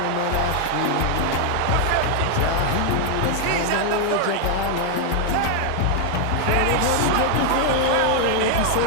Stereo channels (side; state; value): both; different; correlation 0.00